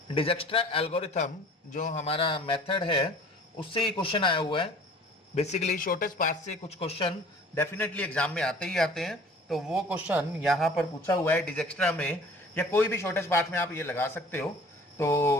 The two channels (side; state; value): both; normal; correlation 0.49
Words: डिजक्स्ट्रा एल्गोरिथम, जो हमारा मेथड है उससे ही क्वेश्चन आया हुआ है। बेसिकली शॉर्टेस्ट पाथ से कुछ क्वेश्चन डेफिनेटली एग्जाम में आते ही आते हैं, तो वो क्वेश्चन यहाँ पर पूछा हुआ है डिजक्स्ट्रा में, या कोई भी शॉर्टेस्ट पाथ में आप ये लगा सकते हो।